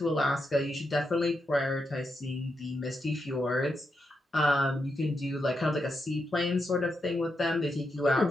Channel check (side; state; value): both; normal; correlation 0.84